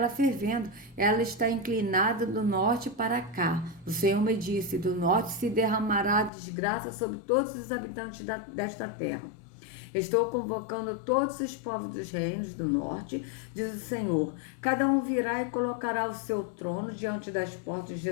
fervendo, ela está inclinada do norte para cá. O Senhor me disse, do norte se derramará desgraça sobre todos os habitantes desta terra. Estou convocando todos os povos dos reinos do norte, diz o Senhor. Cada um virá e colocará o seu trono diante das portas de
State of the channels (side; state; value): right; drops out; at 6.3 s